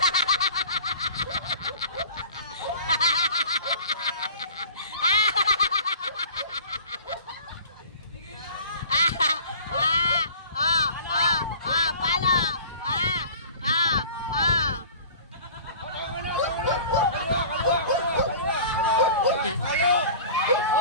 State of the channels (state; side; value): inverted; both; correlation -0.43